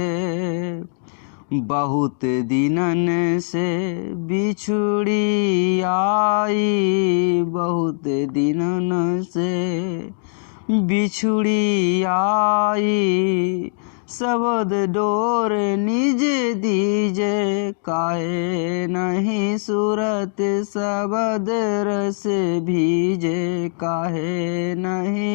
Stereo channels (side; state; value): right; silent; digital silence